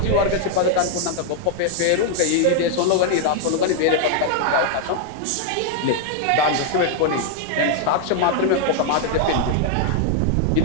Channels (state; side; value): different; both; correlation 0.00